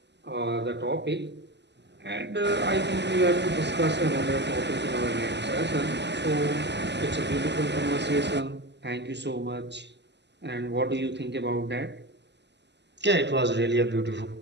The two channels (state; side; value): late; left; 0.50 ms